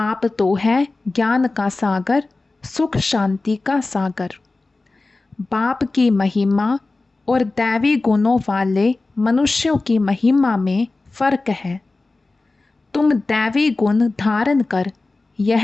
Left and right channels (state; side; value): quieter; right; 3.4 dB